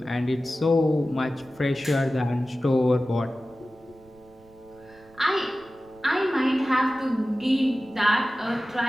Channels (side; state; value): right; noise; rumble, 27 dB below the sound